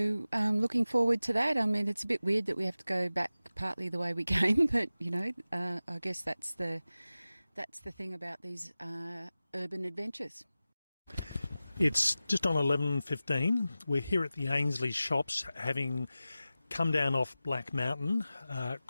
looking forward to that. It's a bit weird that we have to go back partly the way we came, but I guess that's the thing about these urban adventures. It's just on 11:15. We're here at the Ainslie shops, having come down off Black Mountain,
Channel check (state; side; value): inverted; both; correlation -0.95